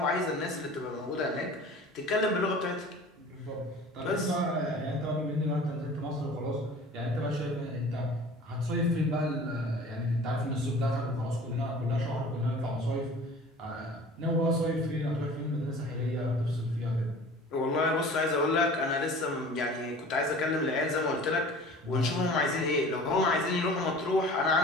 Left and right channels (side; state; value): both; normal; correlation 0.44